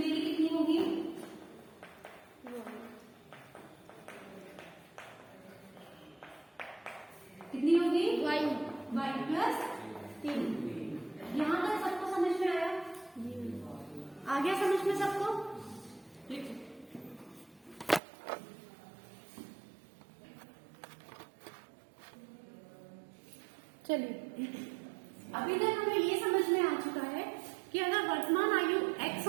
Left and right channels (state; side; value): drops out; left; at 18.0 s